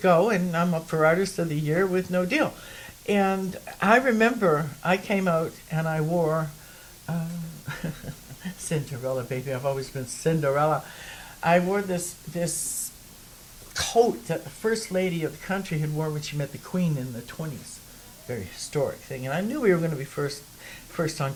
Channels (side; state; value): both; identical; correlation 1.00